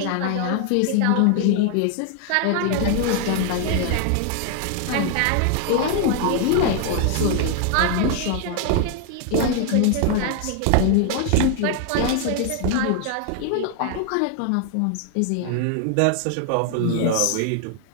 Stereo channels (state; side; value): different; both; correlation 0.00